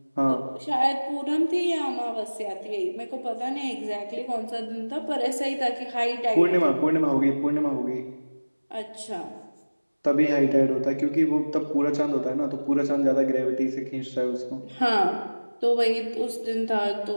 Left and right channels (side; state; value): both; inverted; correlation -1.00